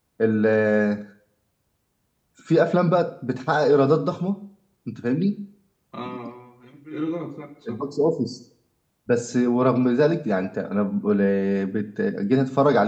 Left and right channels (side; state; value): both; identical; correlation 1.00